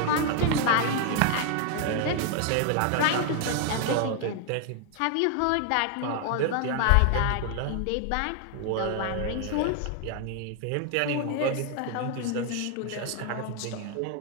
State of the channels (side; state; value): both; different; correlation 0.00